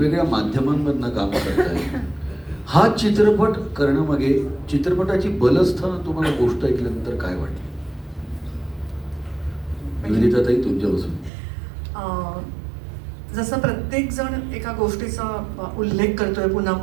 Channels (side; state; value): left; drops out; at 11.3 s